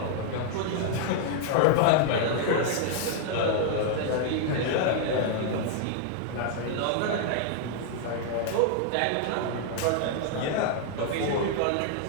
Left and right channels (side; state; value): both; different; correlation 0.00